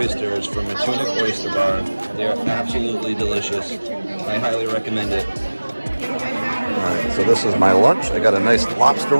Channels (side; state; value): both; inverted; correlation -1.00